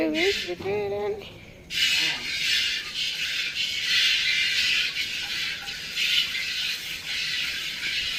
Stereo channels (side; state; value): both; identical; correlation 1.00